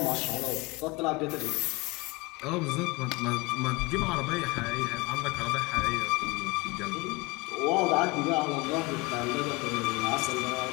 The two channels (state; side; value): quieter; right; 24.5 dB